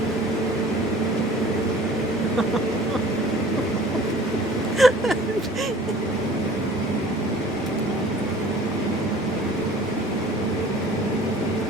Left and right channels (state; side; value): normal; both; correlation 0.48